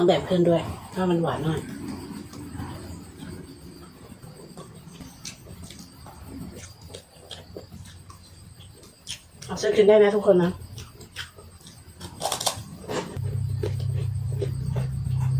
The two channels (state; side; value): identical; both; correlation 1.00